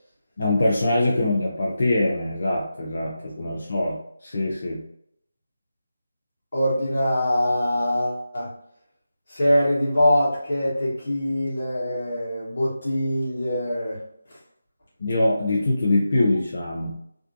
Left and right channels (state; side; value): inverted; both; correlation -0.90